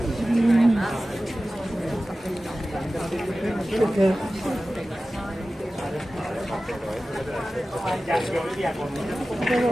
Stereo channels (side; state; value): both; normal; correlation 0.96